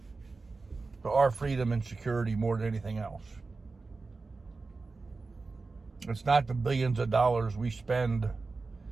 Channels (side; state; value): left; quieter; 3.9 dB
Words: to our freedom and security more than anything else. It's not the billions of dollars we spend